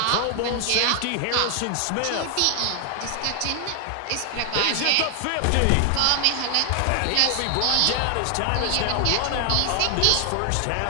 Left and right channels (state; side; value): different; both; correlation 0.00